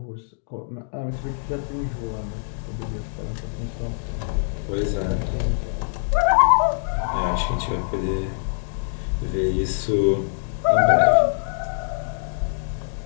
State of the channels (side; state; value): right; silent; digital silence